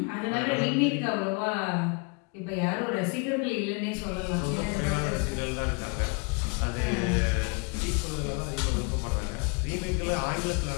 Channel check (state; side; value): quieter; right; 33.2 dB